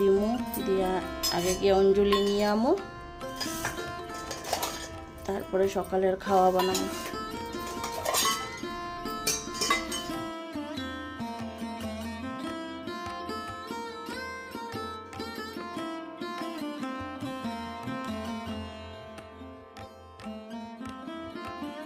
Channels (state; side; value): identical; both; correlation 1.00